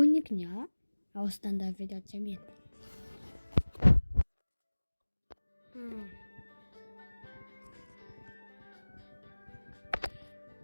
а установить видеоцем нет.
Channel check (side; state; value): both; inverted; correlation -1.00